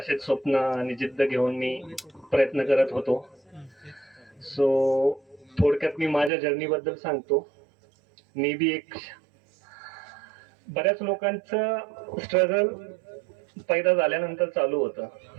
स्वप्न आणि जिद्द घेऊन मी प्रयत्न करत होतो. सो थोडक्यात मी माझ्या जर्नीबद्दल सांगतो. मी बी एक बऱ्याच लोकांचं स्ट्रगल पैदा झाल्यानंतर चालू होतं.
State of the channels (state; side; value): drops out; left; at 6.3 s